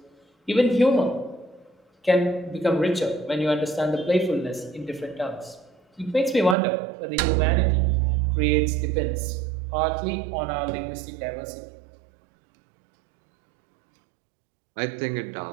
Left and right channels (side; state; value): left; drops out; at 6.6 s